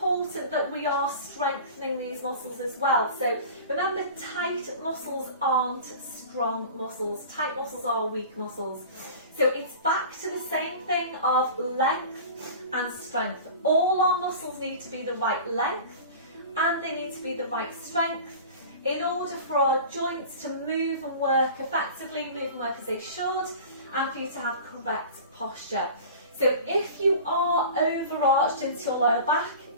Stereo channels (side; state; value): both; inverted; correlation -0.37